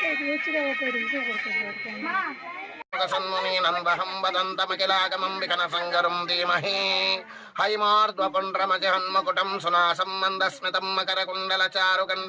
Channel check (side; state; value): both; identical; correlation 1.00